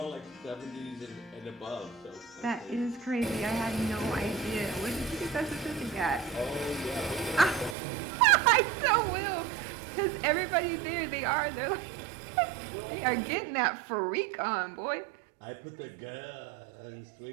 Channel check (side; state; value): left; drops out; at 7.8 s